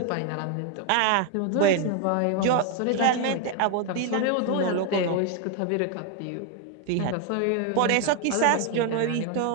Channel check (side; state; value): both; different; correlation 0.01